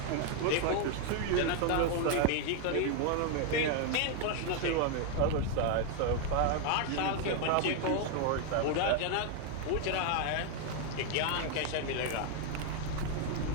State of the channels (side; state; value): both; different; correlation 0.00